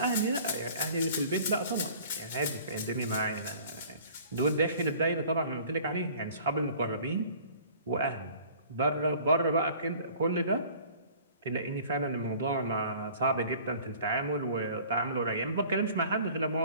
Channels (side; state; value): both; inverted; correlation -0.49